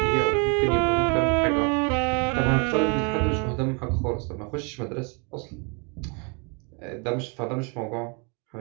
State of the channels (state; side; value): quieter; left; 34.6 dB